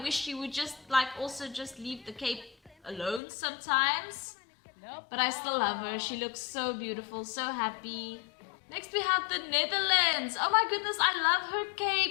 she would just also just leave the cape alone sometimes. But I still love her. She looks so beautiful, so happy. Next we have the Netherlands. Oh my goodness, I love her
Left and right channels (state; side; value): drops out; right; at 3.2 s